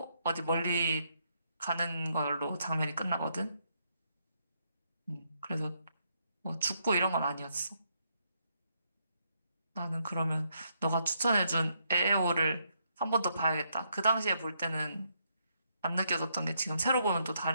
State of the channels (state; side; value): inverted; both; correlation -0.76